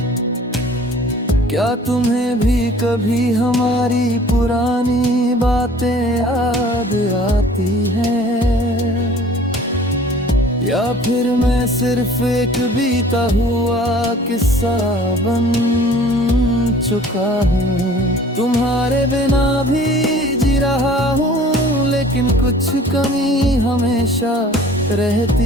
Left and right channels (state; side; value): normal; both; correlation 0.50